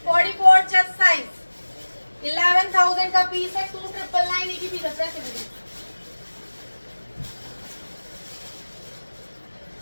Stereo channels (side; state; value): both; inverted; correlation -1.00